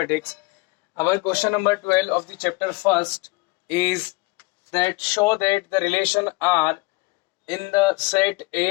Our question number 12 of the chapter first is that show that the relation R in the set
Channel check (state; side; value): quieter; right; 24.1 dB